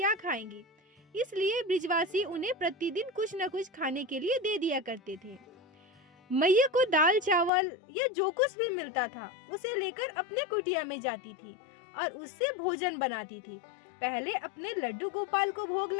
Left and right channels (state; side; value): drops out; right; at 7.5 s